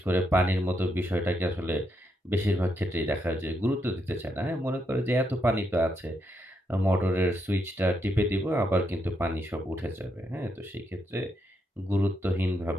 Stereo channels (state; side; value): normal; both; correlation 0.79